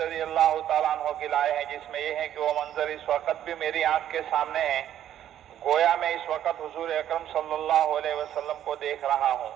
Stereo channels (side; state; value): left; quieter; 11.1 dB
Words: اللہ تعالیٰ عنہ کی لائے ہیں، جس میں یہ ہے کہ وہ منظر اس وقت بھی میری آنکھ کے سامنے ہے، گویا میں اس وقت حضور اکرم صلی اللہ علیہ وسلم کو دیکھ رہا ہوں